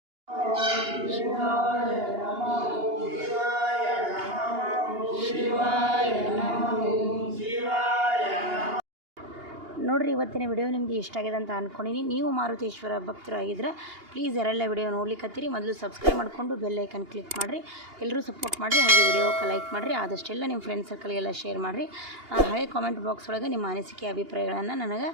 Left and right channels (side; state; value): left; late; 2.8 ms